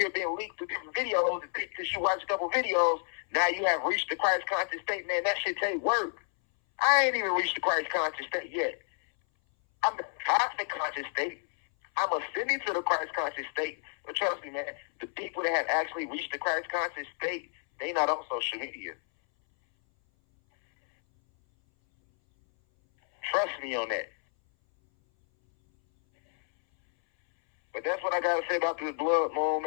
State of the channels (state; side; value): silent; right; 58 dB below the other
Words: hear being leaked through different videos and think because you watch a couple videos, now you have reached the Christ conscious state. Man, that shit take work. I ain't even reached the Christ conscious state yet. I'm the cosmic conscious state. I'm ascending to the Christ conscious state. But trust me, man, the people that have actually reached the Christ conscious state, they not on social media. Trust me on that. But that's what I got to say about this blood moon,